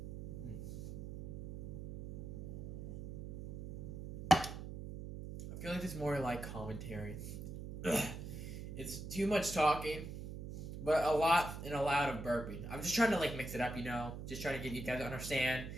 feel like it's more like commentary. It's too much talking, but a lot and a lot of burping. I'm just trying to mix it up, Just trying to get you guys to understand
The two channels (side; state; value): right; noise; hum, 8 dB below the sound